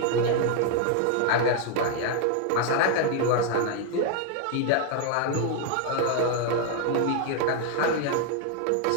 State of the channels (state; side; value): different; both; correlation 0.00